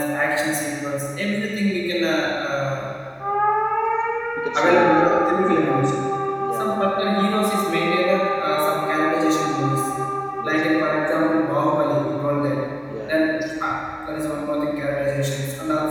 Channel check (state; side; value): identical; both; correlation 1.00